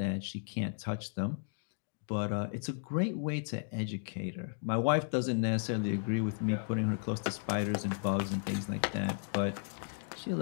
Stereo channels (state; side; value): silent; right; digital silence